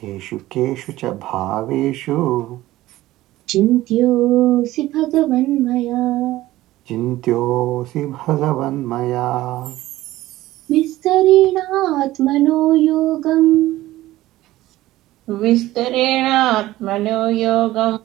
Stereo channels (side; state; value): left; quieter; 16.3 dB